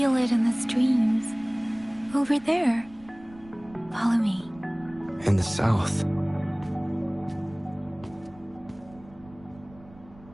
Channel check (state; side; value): noise; right; rumble, 23 dB below the sound